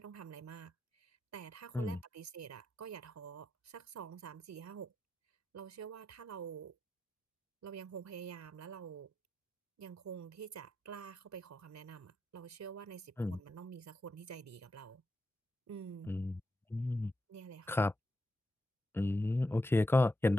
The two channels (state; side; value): normal; both; correlation 0.87